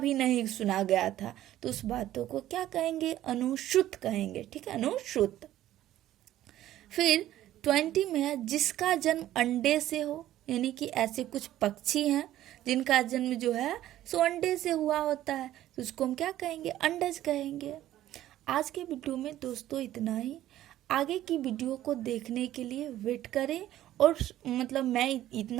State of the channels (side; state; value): left; quieter; 13.5 dB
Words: नहीं सुना गया था, तो उस बातों को क्या कहेंगे? अनुश्रुत कहेंगे, ठीक है, अनुश्रुत। फिर 20 में है जिसका जन्म अंडे से हो, यानी कि ऐसे कुछ पक्षी हैं जिनका जन्म जो है सो अंडे से हुआ होता है, तो उसको हम क्या कहेंगे? अंडज कहेंगे। आज के वीडियो में दोस्तों इतना ही। आगे की वीडियो को देखने के लिए वेट करें। और मतलब मैं